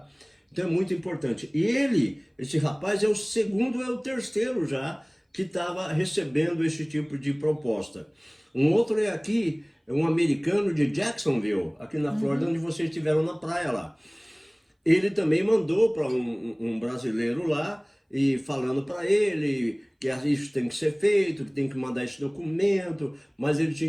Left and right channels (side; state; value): both; identical; correlation 1.00